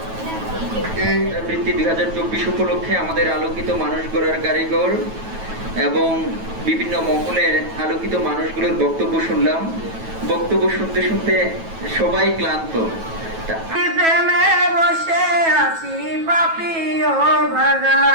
এই বৃত্তি 2024 উপলক্ষে আমাদের আলোকিত মানুষ গড়ার কারিগর এবং বিভিন্ন মহলের আলোকিত মানুষগুলোর বক্তব্য শুনলাম। বক্তব্য শুনতে শুনতে সবাই ক্লান্ত। প্রেমে বসে আছি পাপি ও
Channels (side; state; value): left; late; 9.2 ms